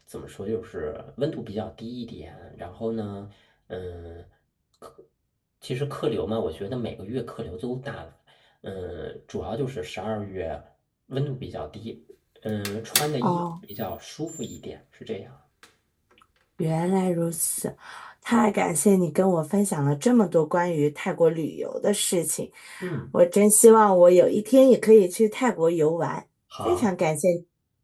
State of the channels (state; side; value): identical; both; correlation 1.00